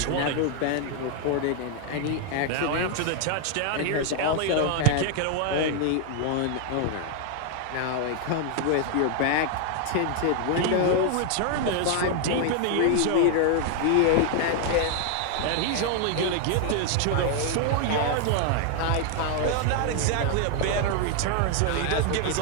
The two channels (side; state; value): both; different; correlation 0.00